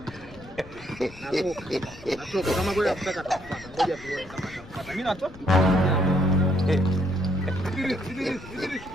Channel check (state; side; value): noise; left; rumble, 19 dB below the sound